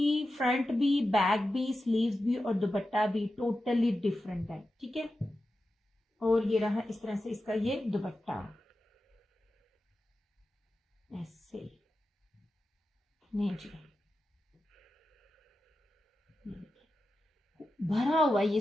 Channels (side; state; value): both; normal; correlation 0.92